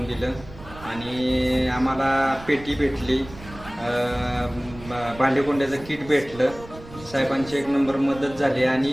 दिलं आणि आम्हाला पेटी भेटली, भांडेकोंड्याचं किट भेटलं. साहेबांची एक नंबर मदत झाली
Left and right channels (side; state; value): right; noise; rumble, 17 dB below the sound